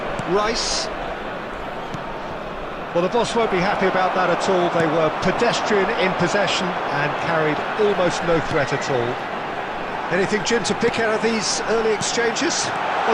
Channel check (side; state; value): both; identical; correlation 1.00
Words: Rice. Well, the boss won't be happy about that at all. They were pedestrian in possession and carried almost no threat at all. Anything, Jim, to pick out of these early exchanges?